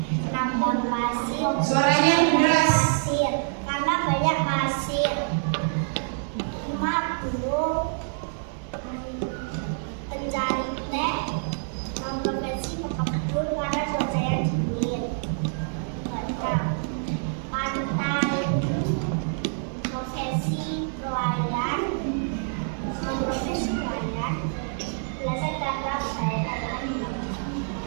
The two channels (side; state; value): left; silent; digital silence